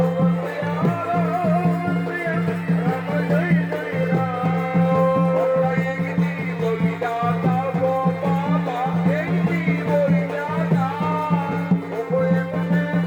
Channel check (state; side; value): identical; both; correlation 1.00